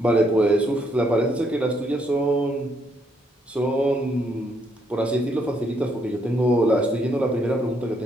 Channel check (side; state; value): both; normal; correlation 0.73